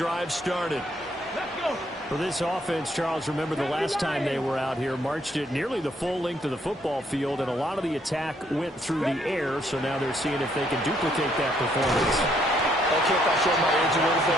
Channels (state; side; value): normal; both; correlation 0.70